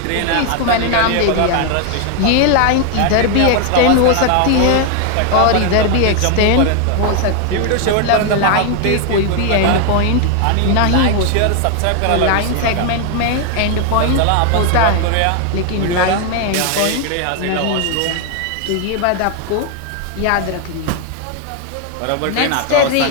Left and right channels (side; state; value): both; different; correlation 0.01